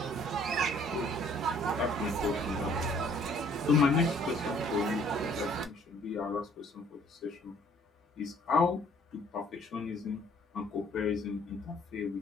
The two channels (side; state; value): both; normal; correlation 0.59